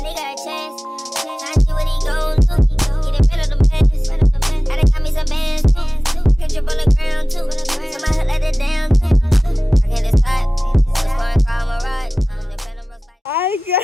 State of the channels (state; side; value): normal; both; correlation 0.98